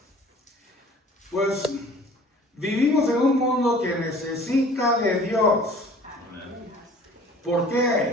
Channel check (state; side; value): normal; both; correlation 0.49